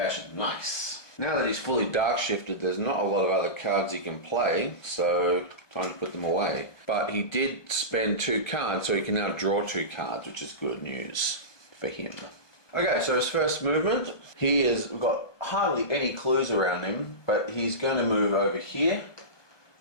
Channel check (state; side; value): late; right; 1.2 ms